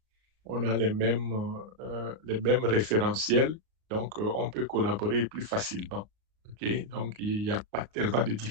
on a les mêmes référentiels, donc on peut collaborer plus facilement. Okay? Donc, il n'y a pas tellement de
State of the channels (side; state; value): left; late; 37 ms